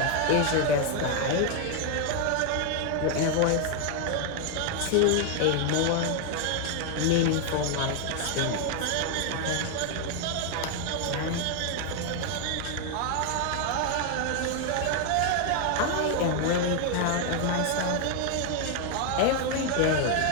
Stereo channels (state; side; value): different; both; correlation 0.00